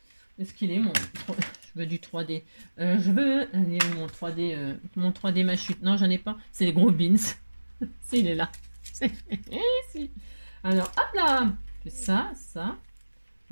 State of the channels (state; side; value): inverted; both; correlation -1.00